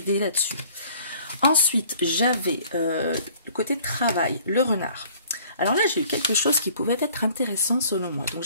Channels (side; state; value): both; inverted; correlation -0.54